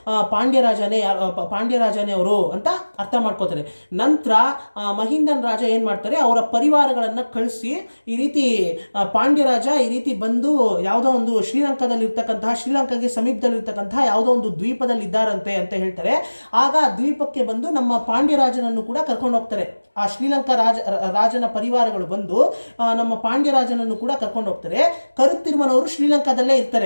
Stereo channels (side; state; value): both; inverted; correlation -1.00